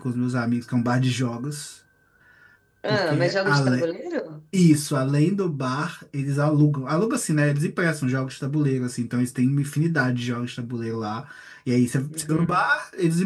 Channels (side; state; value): both; identical; correlation 1.00